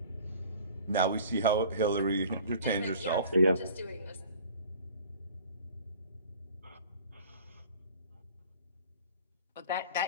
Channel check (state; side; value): inverted; both; correlation -0.47